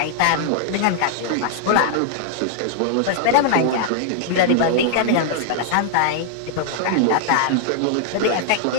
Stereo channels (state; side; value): different; both; correlation -0.01